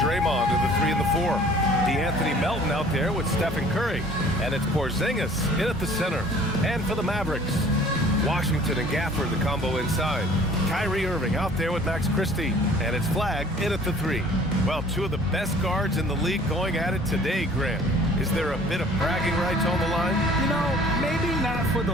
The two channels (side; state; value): both; normal; correlation 0.51